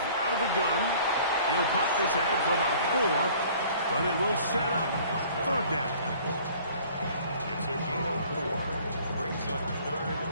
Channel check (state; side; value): inverted; both; correlation -0.52